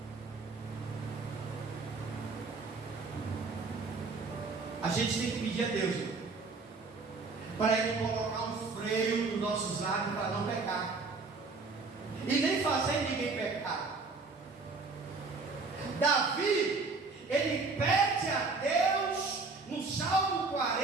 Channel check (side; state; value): left; quieter; 4.1 dB